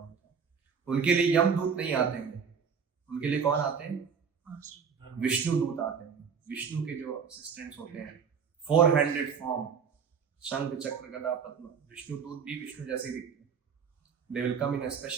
था। उनके लिए यमदूत नहीं आते हैं, उनके लिए कौन आते हैं? विष्णु दूत आते हैं। विष्णु के जो असिस्टेंट्स होते हैं, 4 हैंडेड फॉर्म, शंख चक्र गदा पद्म, विष्णु दूत भी विष्णु जैसे ही दिखते हैं। They will come in a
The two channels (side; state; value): left; quieter; 6.4 dB